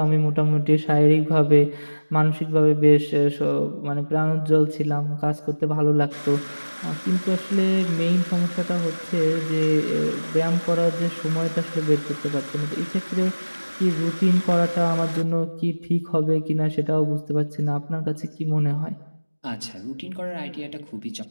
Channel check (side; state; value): both; inverted; correlation -1.00